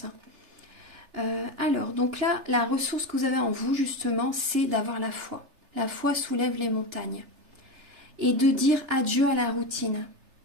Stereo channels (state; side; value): late; left; 3.3 ms